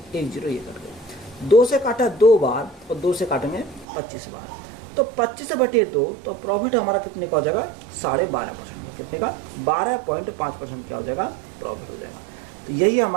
1 जीरो, ये कट गए। 2 से काटा 2 बार और 2 से काटेंगे 25 बार, तो 25 बटे 2, तो प्रॉफिट हमारा कितने का हो जाएगा 12.5% का। कितने का 12.5% क्या हो जाएगा प्रॉफिट हो जाएगा। तो यही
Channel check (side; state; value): left; drops out; at 3.9 s